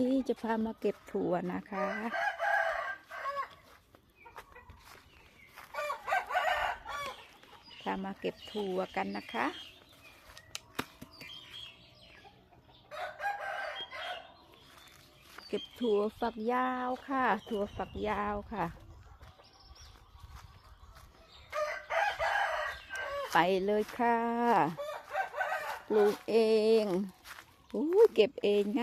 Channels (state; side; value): identical; both; correlation 1.00